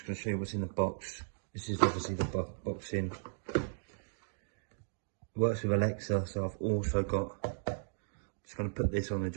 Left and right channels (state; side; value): silent; left; digital silence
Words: going to show you what's in the box. This is obviously the box in. Works with Alexa, so I've also got, just going to put this on the